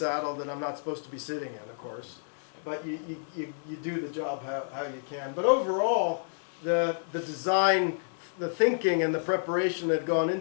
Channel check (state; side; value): silent; right; digital silence